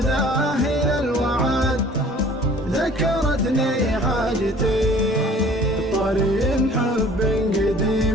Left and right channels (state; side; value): normal; both; correlation 0.50